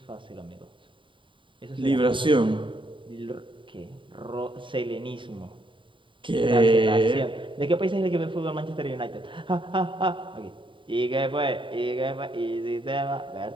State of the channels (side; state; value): left; late; 0.24 ms